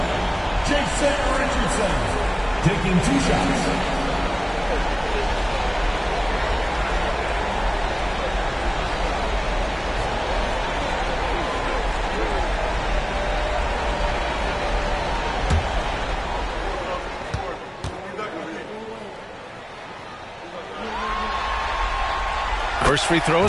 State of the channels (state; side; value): identical; both; correlation 1.00